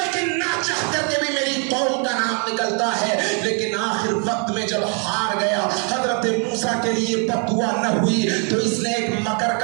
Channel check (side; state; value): left; quieter; 38.4 dB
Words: نہ چاہ کر کے بھی میری قوم کا نام نکلتا ہے۔ لیکن آخر وقت میں جب ہار گیا، حضرت موسیٰ کے لیے بد دعا نہ ہوئی تو اس نے ایک مکر